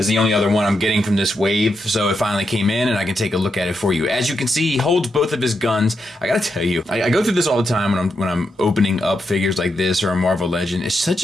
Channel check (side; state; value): both; normal; correlation 0.84